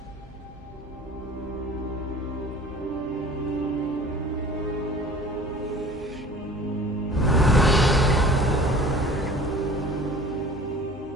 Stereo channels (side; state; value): both; normal; correlation 0.45